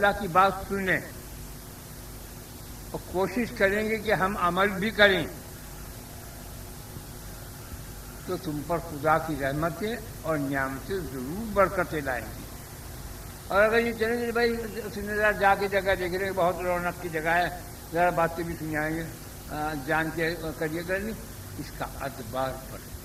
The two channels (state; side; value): identical; both; correlation 1.00